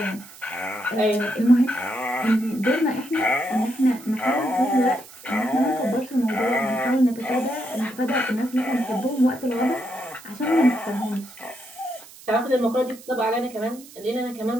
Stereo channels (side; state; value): right; noise; hiss, 20 dB below the sound